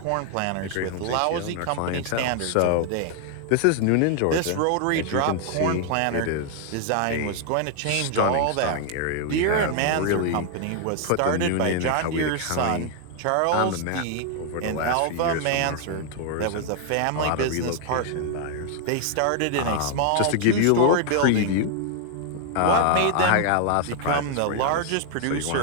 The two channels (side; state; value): both; different; correlation 0.00